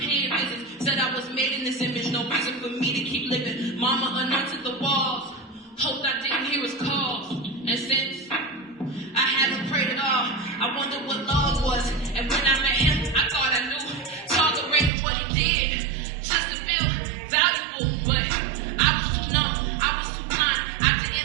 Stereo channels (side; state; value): left; drops out; at 14.9 s